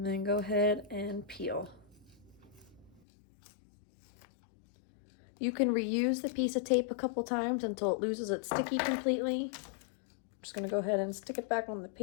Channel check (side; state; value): right; drops out; at 3.0 s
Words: then go ahead and peel. You can reuse the piece of tape a couple times until it loses its sticky completely. I'm just gonna go ahead and stick it back on the